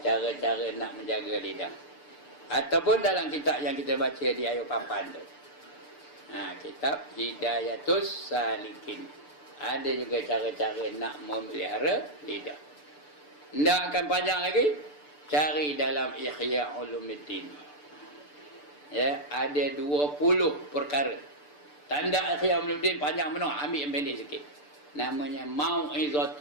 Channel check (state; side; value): late; right; 6.8 ms